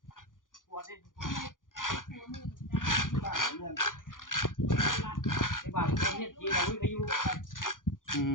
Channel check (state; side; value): late; right; 0.89 ms